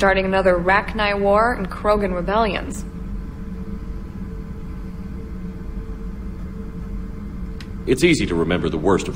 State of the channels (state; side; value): identical; both; correlation 1.00